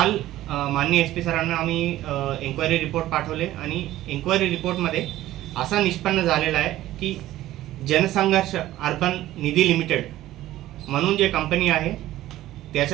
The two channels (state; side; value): quieter; left; 14.8 dB